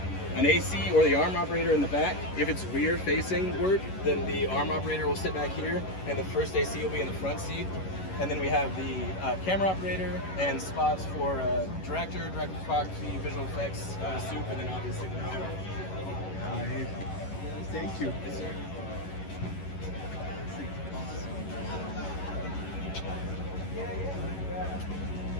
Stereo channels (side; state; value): right; late; 11 ms